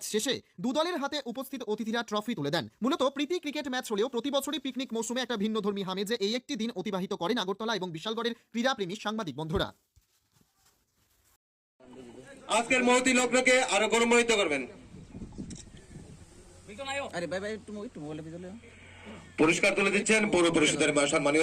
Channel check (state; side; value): identical; both; correlation 1.00